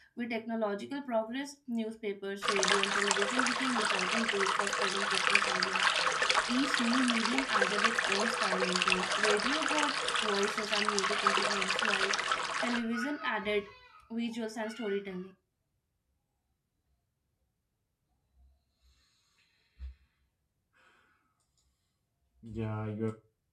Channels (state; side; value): identical; both; correlation 1.00